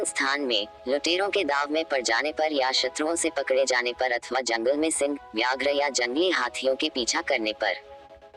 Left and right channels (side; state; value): both; identical; correlation 1.00